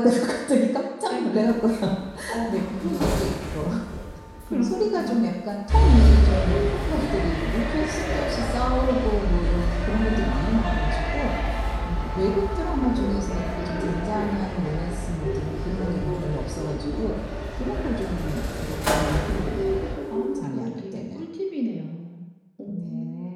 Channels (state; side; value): identical; both; correlation 1.00